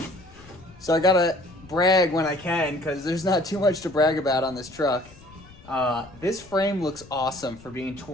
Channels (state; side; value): noise; left; rumble, 23 dB below the sound